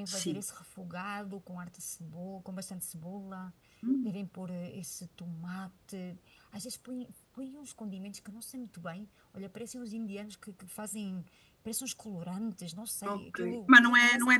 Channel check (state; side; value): identical; both; correlation 1.00